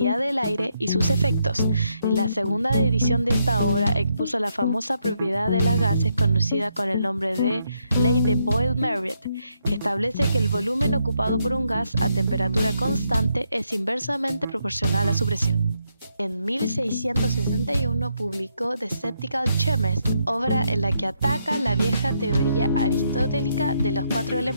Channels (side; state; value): both; inverted; correlation -0.78